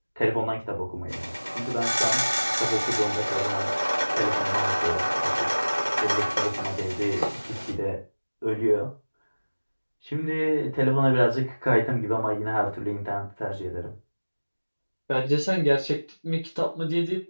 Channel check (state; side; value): inverted; both; correlation -1.00